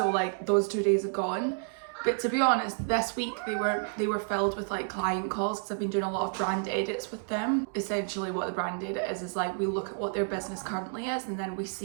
like those 2 days have gone. But to be honest, this week they were filled with like client calls because I've been doing a lot of brand edits with them. Essentially what the brand edit is like we look at what their business currently is and then we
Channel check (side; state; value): left; silent; 58 dB below the other